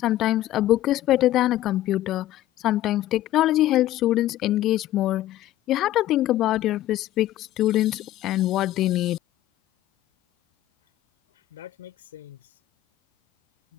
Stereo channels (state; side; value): quieter; right; 14.3 dB